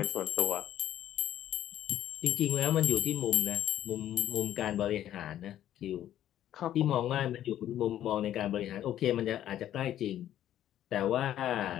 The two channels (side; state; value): right; quieter; 11.8 dB